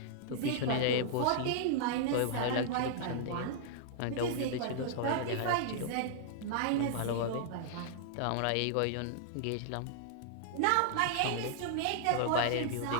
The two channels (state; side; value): different; both; correlation -0.01